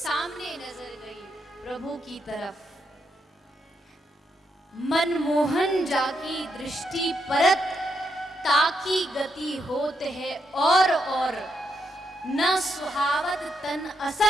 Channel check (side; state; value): both; normal; correlation 0.81